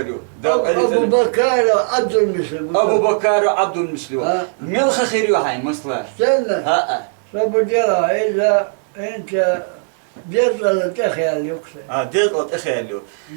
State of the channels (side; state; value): left; silent; digital silence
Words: Abu Bakar Abdülmüslim. أبو بكر عبد المسلم ملخ خير وحين مصلح Sen ها Sabu dira إذا أنت جزء تخيل يكسر. ديت أتخيلوا